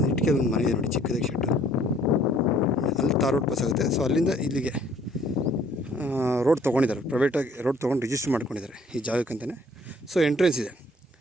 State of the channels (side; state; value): both; normal; correlation 0.59